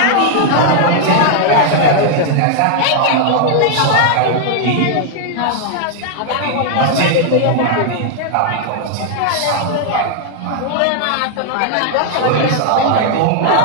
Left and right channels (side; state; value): both; different; correlation 0.00